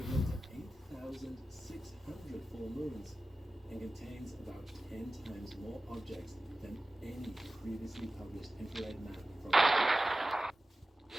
to 8,600 full moons, and contains about 10 times more objects than any previously published infrared map from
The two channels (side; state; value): both; normal; correlation 0.95